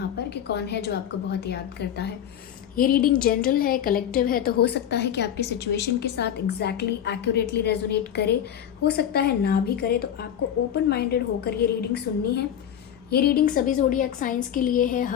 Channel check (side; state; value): right; quieter; 9.8 dB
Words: पर कि कौन है जो आपको बहुत याद करता है। ये रीडिंग जनरल है, कलेक्टिव है, तो हो सकता है कि आपकी सिचुएशन के साथ एग्जैक्टली एक्यूरेटली रेजोनेट करे, हो सकता है ना भी करे। तो आपको ओपन माइंडेड होकर ये रीडिंग सुननी है। ये रीडिंग सभी ज़ोडिएक साइंस के लिए है,